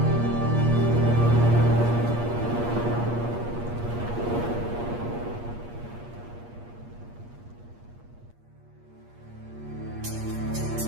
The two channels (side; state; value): left; late; 8.5 ms